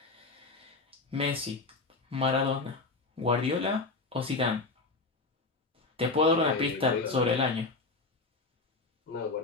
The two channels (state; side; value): quieter; right; 3.6 dB